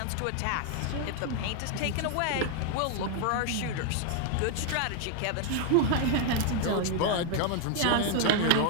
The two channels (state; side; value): different; both; correlation 0.00